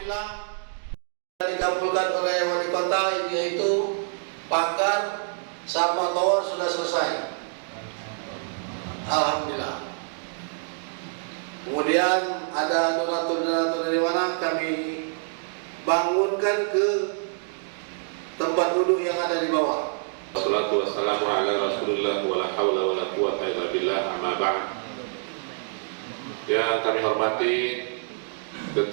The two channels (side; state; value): left; silent; digital silence